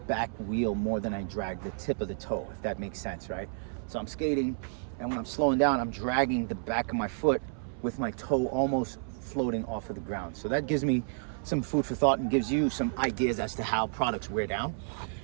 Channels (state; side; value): silent; left; 57 dB below the other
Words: wheel more than I drag the tip of the toe, if that makes sense, right? So I'm skating, and when I'm slowing down, I'm dragging the back of my foot with my toe almost floating off of the ground. So that gives me some food for thought and gives you some ideas as to how products wear down.